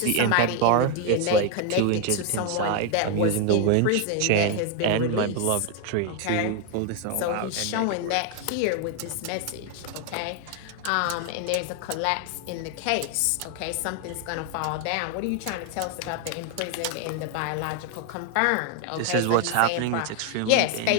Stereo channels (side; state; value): both; different; correlation 0.01